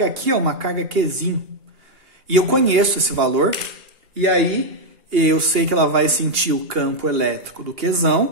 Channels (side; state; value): left; late; 2.8 ms